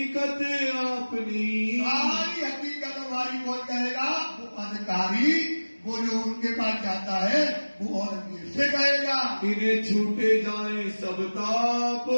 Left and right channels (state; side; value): inverted; both; correlation -1.00